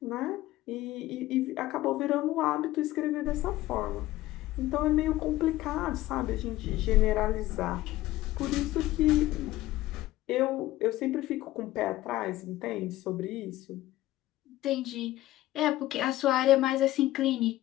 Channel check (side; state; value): right; quieter; 16.1 dB